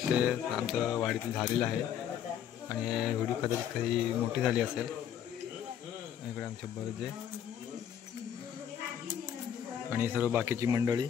आमचं वाडीतील झालेलं आहे आणि व्हिडिओ कदाचित काही मोठी झाली असेल. इकडे आमचे बर्जे आणि सर्व बाकीची मंडळी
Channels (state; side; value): quieter; right; 9.4 dB